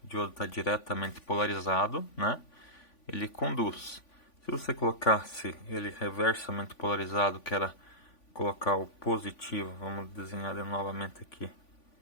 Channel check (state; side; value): late; right; 3.5 ms